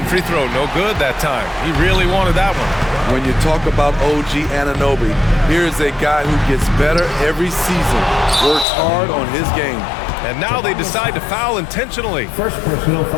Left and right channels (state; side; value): drops out; right; at 8.7 s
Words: free throw, no good that time. He really wanted that one. When you talk about OG Anunoby, here's a guy who gets better every season, works hard on his game. And now they decide to foul intentionally. First personal